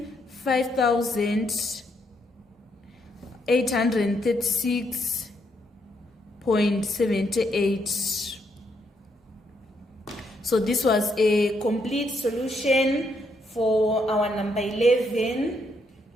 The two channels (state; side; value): normal; both; correlation 0.75